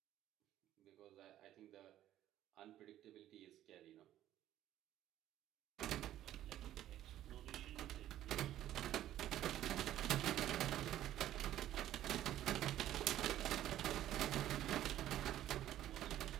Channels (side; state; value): left; quieter; 12.8 dB